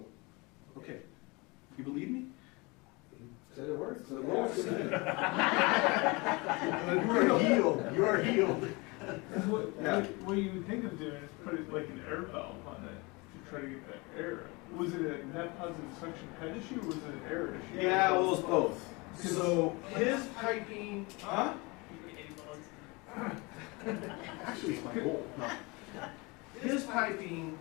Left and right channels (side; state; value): right; quieter; 26.3 dB